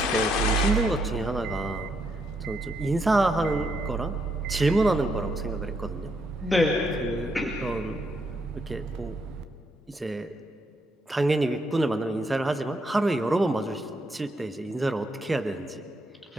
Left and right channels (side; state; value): both; normal; correlation 0.77